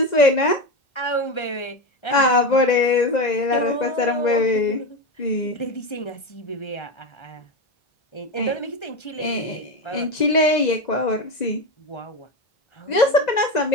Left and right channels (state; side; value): late; right; 2.0 ms